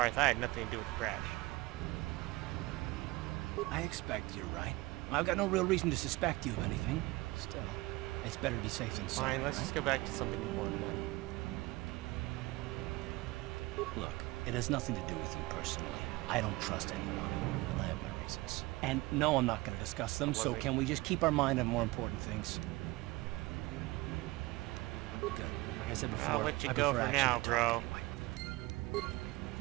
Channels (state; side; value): quieter; left; 21.2 dB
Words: I had nothing to do with the crash. I expect you're right. I've got no real reason to suspect you of anything. Still, it's better to be safe than sorry, Fine, let's right? just go back to something important then. Look, it has nothing to do with you personally. I don't trust anyone. And I have my reasons. And no, I'm not going to discuss them, so can we just keep our mind on more important things? Good. Like I said before, I'll let you I go prefer for action now, to talk bro. anyway.